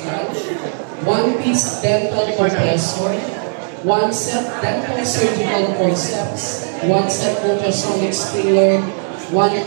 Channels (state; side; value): silent; left; digital silence